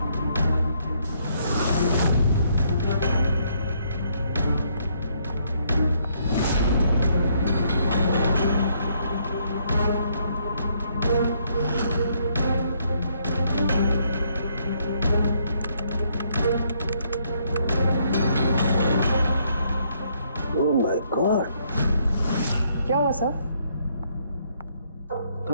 क्या हुआ सर?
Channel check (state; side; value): inverted; both; correlation -0.70